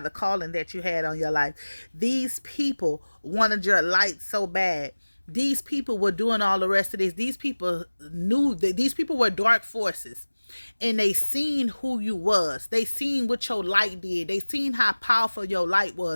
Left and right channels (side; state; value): both; inverted; correlation -1.00